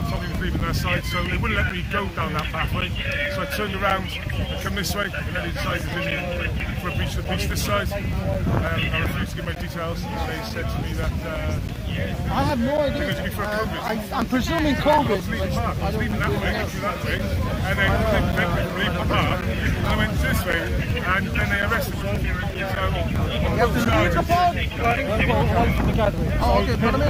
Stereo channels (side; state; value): both; identical; correlation 1.00